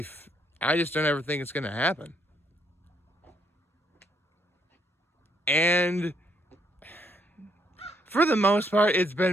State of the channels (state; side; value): normal; both; correlation 0.72